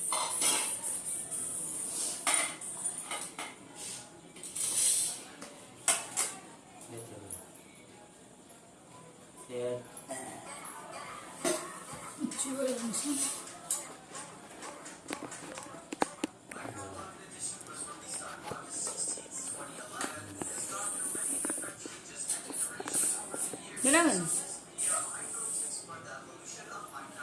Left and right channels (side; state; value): both; identical; correlation 1.00